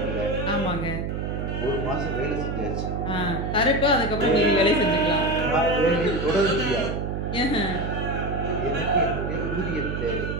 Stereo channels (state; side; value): noise; right; hum, 3 dB below the sound